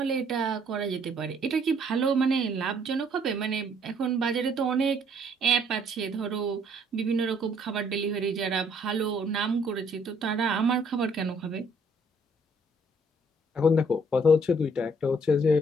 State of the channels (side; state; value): both; normal; correlation 0.64